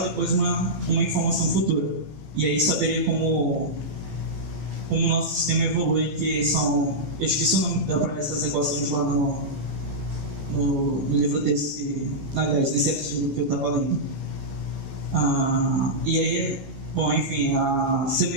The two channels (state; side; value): late; left; 15 ms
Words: e depois uma informação futura. E aí saberia como o nosso sistema evolui, que são... Eu esqueci o nome para essas equações lá no livro desse, aliás, nesse artigo que eu estava lendo. E aí, bom, enfim, a